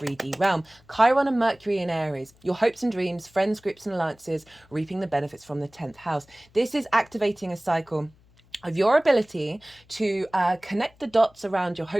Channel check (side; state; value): left; noise; hum, 30 dB below the sound